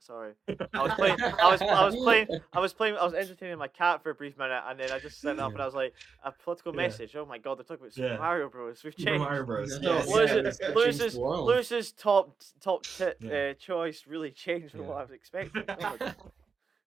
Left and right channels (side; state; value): left; quieter; 5.4 dB